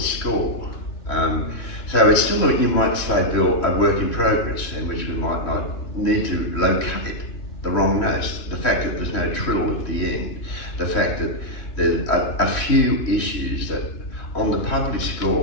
score. So it's still, you might say, Bill, a work in progress, in which we might not need to locate the wrong notes. The fact that there's no trill at the end, the fact that there's a few issues that on the published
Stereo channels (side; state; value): right; late; 3.2 ms